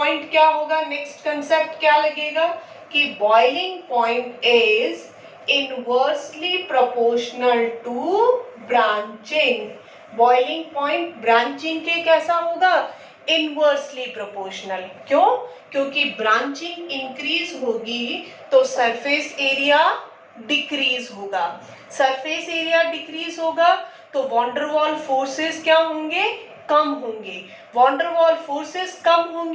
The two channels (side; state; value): both; identical; correlation 1.00